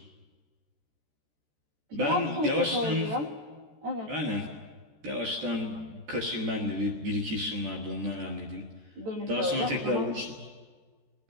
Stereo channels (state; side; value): late; left; 14 ms